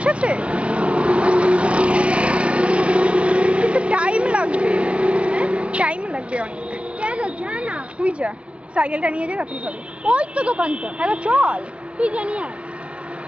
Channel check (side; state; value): left; late; 0.061 ms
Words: কিন্তু টাইম লাগবে, টাইম লাগবে অনেক। কেন যা না, তুই যা, সাইকেলটা নিয়ে যা, তাড়াতাড়ি হবে। ওই তো দোকানটা। হ্যাঁ তো চল, তুই জানি আর